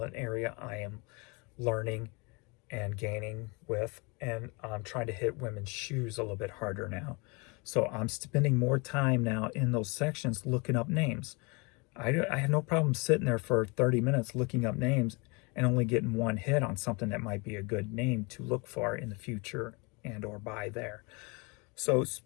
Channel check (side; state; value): right; quieter; 29.5 dB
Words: an area I am learning and gaining with, and I'm trying to hit women's shoes a little bit harder now. So I'm spending more time now in those sections looking up names. I have no problem sitting there for 30 minutes looking up names and only getting one hit on something that might be a good name to look for in the future and or buy there. So